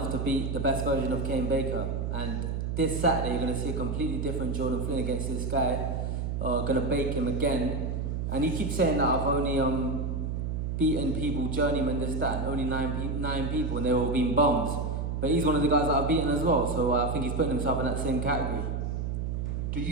to beat the best version of Kane Baker. And this Saturday, you're going to see a completely different Jordan Flynn against this guy. Going to bake him again. And he keeps saying that I've only beaten people, journeyman, this, that, and only nine people, and they've all been bums. But he's one of the guys that I've beaten as well, so I think he's putting himself in that same category. Do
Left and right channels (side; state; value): right; noise; hum, 2 dB below the sound